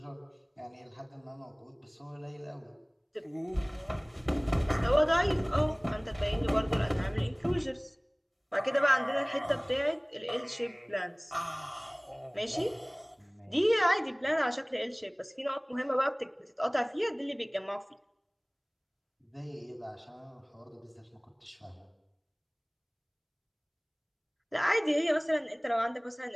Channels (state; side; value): identical; both; correlation 1.00